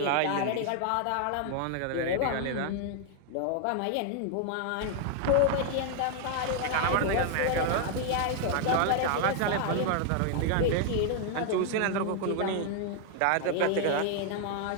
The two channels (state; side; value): different; both; correlation 0.00